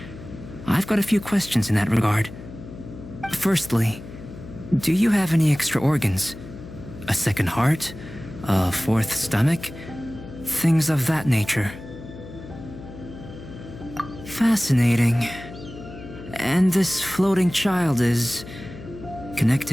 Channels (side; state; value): left; noise; hum, 14 dB below the sound